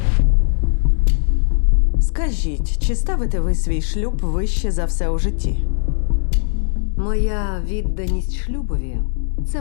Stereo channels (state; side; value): silent; right; digital silence